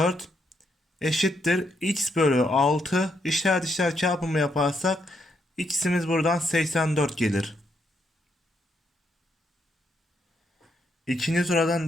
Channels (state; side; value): normal; both; correlation 0.77